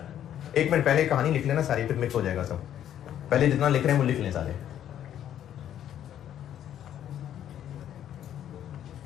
एक मिनट पहले कहानी लिख लेना सारी, फिर मिक्स हो जाएगा सब। पहले जितना लिख रहे हैं वो लिख लें सारे।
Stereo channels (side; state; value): right; quieter; 10.6 dB